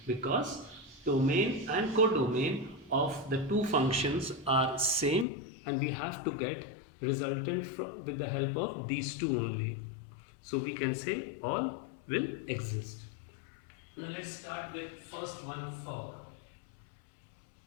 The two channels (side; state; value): right; drops out; at 5.2 s